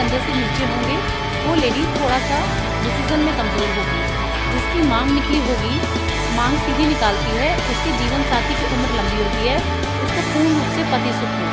से नीचे होंगे वो लेडी थोड़ा सा डिसीज़न में कमज़ोर होगी। जिसकी मांग निकली होगी, मांग सीधी निकालती है, उसके जीवन साथी की उम्र लंबी होती है, उसको पूर्ण रूप से पति सुख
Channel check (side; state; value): both; identical; correlation 1.00